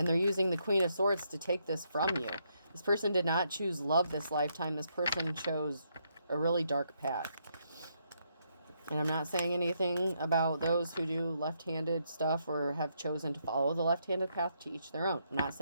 they're using the Queen of Swords to take this from you. This person did not choose love this lifetime. This person chose a really dark path. And I'm not saying anything about those who do left-handed stuff or have chosen to follow the left-handed path, to each their own. I'm not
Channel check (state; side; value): inverted; both; correlation -0.77